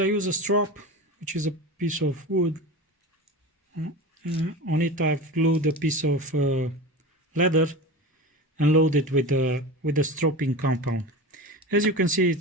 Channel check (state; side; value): normal; both; correlation 0.29